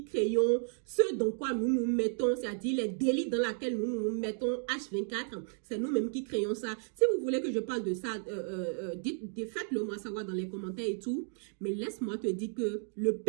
créons ce dans quoi nous nous mettons, c'est-à-dire les délits dans lesquels nous nous mettons H24. C'est nous-mêmes qui créons ça. Si vous voulez que je parle de ça, faites-le moi savoir dans les commentaires et tout. Mais laisse-moi te dire que le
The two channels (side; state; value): left; silent; 56 dB below the other